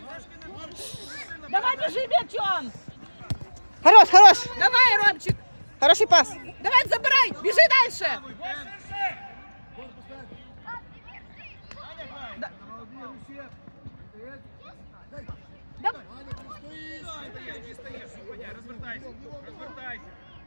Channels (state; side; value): inverted; both; correlation -1.00